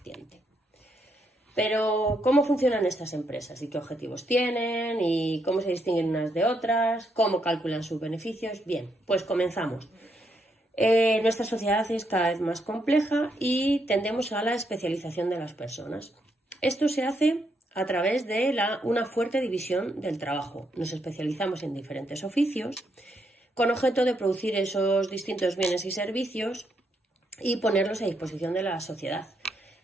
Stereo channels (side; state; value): both; normal; correlation 0.77